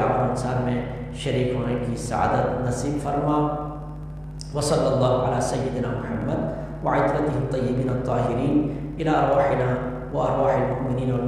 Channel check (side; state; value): both; identical; correlation 1.00